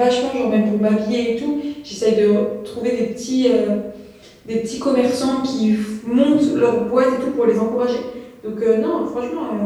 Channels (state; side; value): identical; both; correlation 1.00